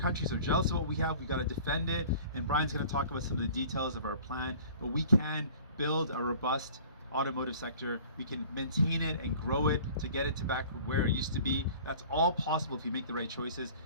are jealous of what we have. We've got to defend it. And Brian's going to talk about some of the details of our plan. But we can build a robust automotive sector. We can maintain it and grow it to get it to back where it used to be. That's all possible if you make the right choices,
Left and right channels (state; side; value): inverted; both; correlation -0.47